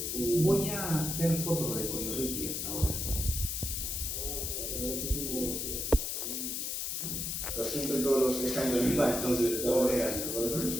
a hacer fotos de Coyorriti hasta ahora. Pero siempre todos los están en viva, entonces todo es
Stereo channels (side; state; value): left; noise; hiss, 2 dB below the sound